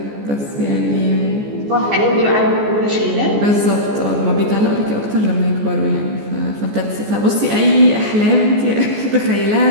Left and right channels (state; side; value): late; left; 14 ms